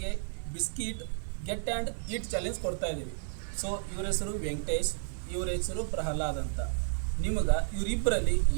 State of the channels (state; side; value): silent; left; 56 dB below the other